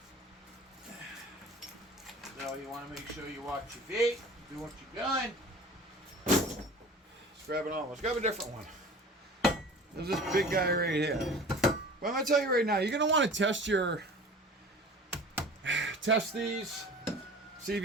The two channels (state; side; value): normal; both; correlation 0.41